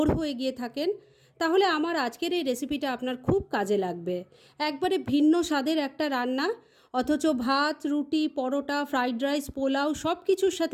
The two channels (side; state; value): both; identical; correlation 1.00